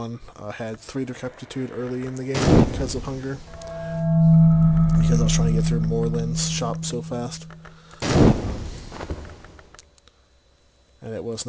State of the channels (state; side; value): identical; both; correlation 1.00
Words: I had 3 decrepitude early in the game because of hunger. Because I was trying to get through Moreland's shop so fast. And it was